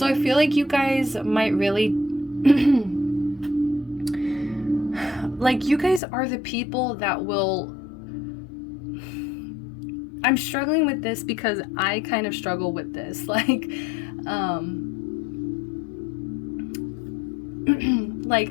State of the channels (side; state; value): right; drops out; at 6.0 s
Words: I feel like you guys might really like, you guys are the people that will, I'm struggling with this because I kind of struggle with this. Like, like,